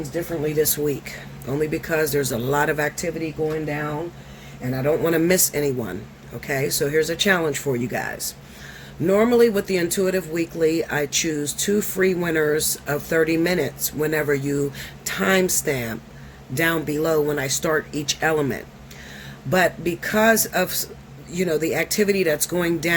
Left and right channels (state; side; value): identical; both; correlation 1.00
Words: differently this week, only because there's a lot of activity going down, and I don't want to miss anyone. Okay, so here's a challenge for you guys. Normally with the Intuitive Weekly, I choose 2 free winners of 30 minutes whenever you timestamp down below when I start each element. But because of, the activity that's going